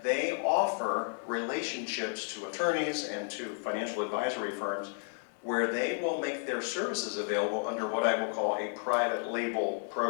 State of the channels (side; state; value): right; silent; 56 dB below the other